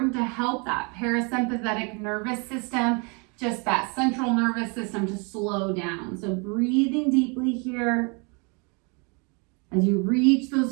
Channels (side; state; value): left; quieter; 32.9 dB